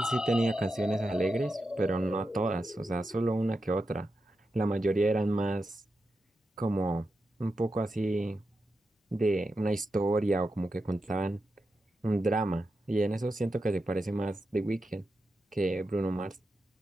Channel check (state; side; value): normal; both; correlation 0.89